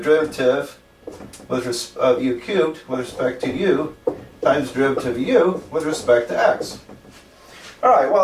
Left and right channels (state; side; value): identical; both; correlation 1.00